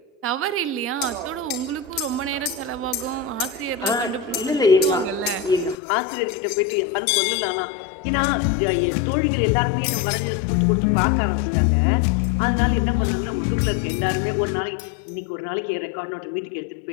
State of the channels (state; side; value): drops out; right; at 5.8 s